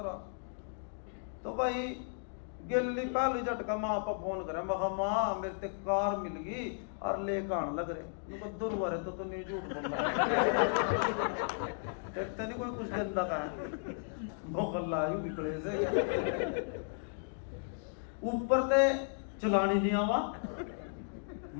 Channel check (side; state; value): right; silent; digital silence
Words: तो भाई गिल्ली पहले झटका माँ पर फोन करे मैं माँ मेरे ते कार मिल गई और लेकर आने लग रहे उनको दुर्वारे तो नहीं झूठ बोल रहा देखते नहीं कोई कुछ गंदा का मोहल्ला यू बिगड़े से ऊपर ते चलानी नहीं आवा